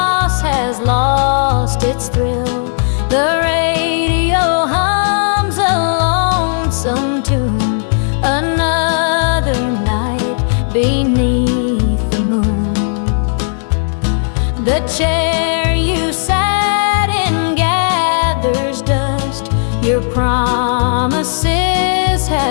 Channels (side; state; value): right; silent; 70 dB below the other